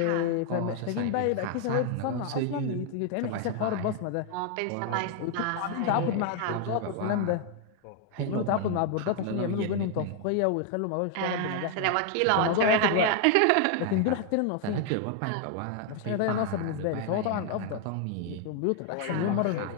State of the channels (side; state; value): both; different; correlation 0.00